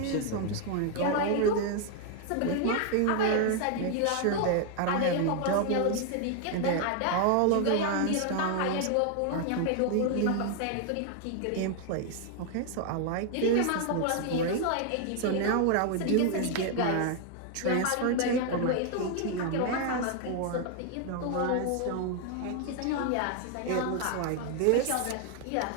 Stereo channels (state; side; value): different; both; correlation 0.00